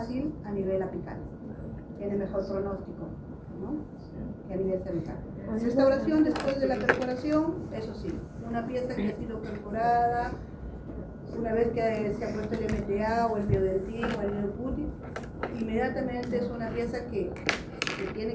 a nivel apical, tiene mejor pronóstico, ¿no? Que a nivel cervical. Restauración después de la perforación, eso sí, una pieza que ha sido perforada, una vez que se ha puesto el MTA o el biodentín o el New Putty, inmediatamente es una pieza que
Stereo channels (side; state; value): both; identical; correlation 1.00